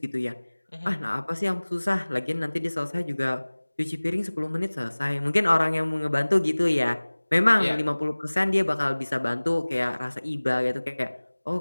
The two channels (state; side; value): inverted; both; correlation -1.00